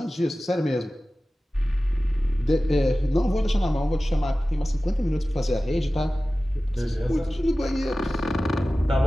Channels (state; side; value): normal; both; correlation 0.96